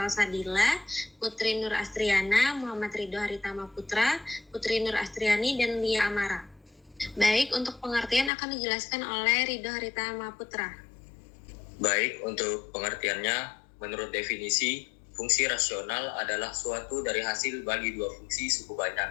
Sadila, Putri Nur Astriana, Muhammad Ridho Haritama Putra, Putri Nur Astriani, dan Lia Amara. Baik, untuk pengertian akan dijelaskan oleh Ridho Haritama Putra. Baik, untuk pengertiannya, menurut definisi, fungsi rasional adalah suatu dari hasil bagi dua fungsi suku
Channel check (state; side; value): drops out; right; at 8.3 s